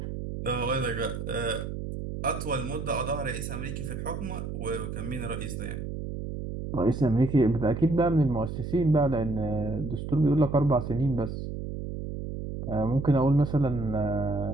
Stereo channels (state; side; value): noise; right; hum, 6 dB below the sound